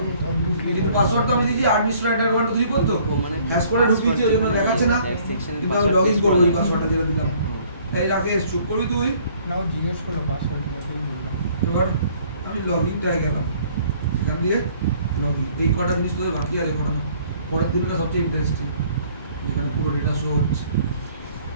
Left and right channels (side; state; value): both; inverted; correlation -0.59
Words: কিন্তু পাসওয়ার্ড তো আমি দিয়েছি @1234 তো ও মানে হ্যাশ কোডে ঢুকিয়েছি ওই জন্য দেখাচ্ছে না কিন্তু আমি লগইন করবো ওই পাসওয়ার্ডটা যেটা দিলাম তাই রাকেশ চুপ করবি তুই নাও জিজ্ঞেস করো পাসওয়ার্ড এবার আমি লগইনটায় গেলাম এখান দিয়ে লগইন এই কটা জিনিস তোদের বাকি আছে করানো পরের দিনটা সবচেয়ে ইন্টারেস্টিং যেখানে পুরো ডেটা শো হচ্ছে